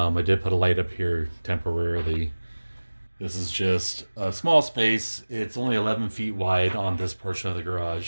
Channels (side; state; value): both; inverted; correlation -1.00